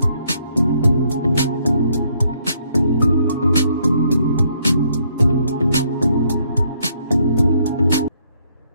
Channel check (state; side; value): inverted; both; correlation -0.70